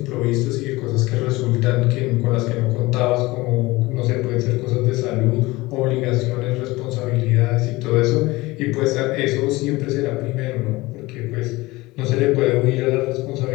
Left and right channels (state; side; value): quieter; right; 20.8 dB